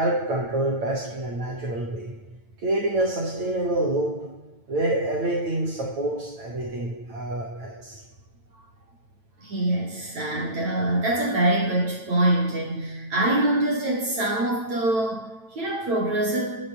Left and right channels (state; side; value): late; left; 9.0 ms